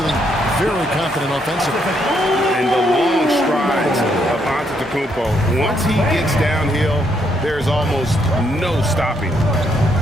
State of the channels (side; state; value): both; normal; correlation 0.74